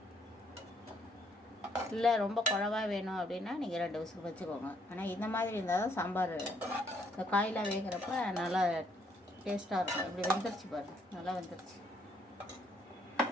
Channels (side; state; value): both; normal; correlation 0.69